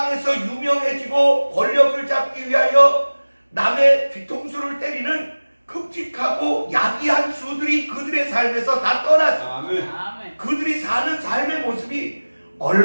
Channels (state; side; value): inverted; both; correlation -1.00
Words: 유명해지고 권력을 잡기 위하여 남의 뒤통수를 때리는 끔찍하고 야비한 수들이 그들의 삶에서 다 떠났어요. 아멘. 그들이 사는 삶의 모습이